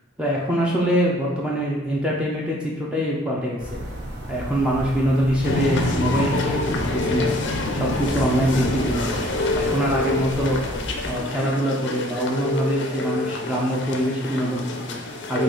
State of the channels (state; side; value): normal; both; correlation 0.57